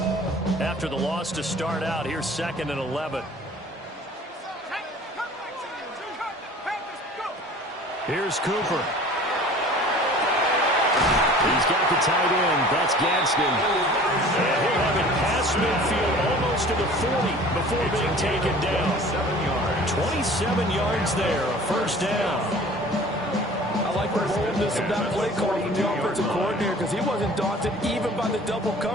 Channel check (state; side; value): normal; both; correlation 0.46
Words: After the loss to start out, here's 2nd and 11. Here's Cooper. He's got the tight end. That's Gadsden. And he'll have it past midfield almost to the 40 before being taken down. 27 yards there, a 1st down. I like the boldness of that play call from the offensive coordinator because he wasn't daunted even by the double